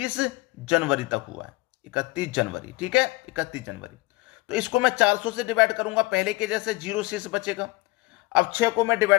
जनवरी तक हुआ है, 31 जनवरी, ठीक है, 31 जनवरी। तो इसको मैं 400 से डिवाइड करूंगा, पहले के जैसे 0 शेष बचेगा। अब 6 को मैं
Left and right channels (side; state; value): right; quieter; 21.6 dB